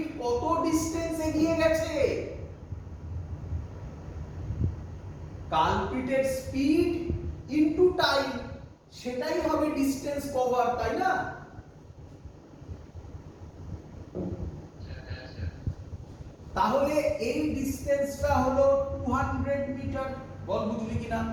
কত ডিসটেন্স এগিয়ে গেছে? কালপ্রিটের স্পিড ইনটু টাইম, সেটাই হবে ডিসটেন্স কভার, তাই না? তাহলে এই ডিসটেন্সটা হলো 200 মিটার। বল বুঝলি কিনা?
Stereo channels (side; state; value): both; identical; correlation 1.00